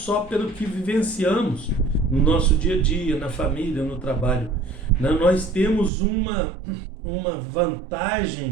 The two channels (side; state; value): left; drops out; at 5.9 s